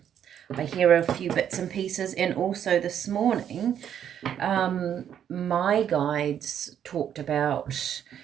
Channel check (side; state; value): left; quieter; 9.4 dB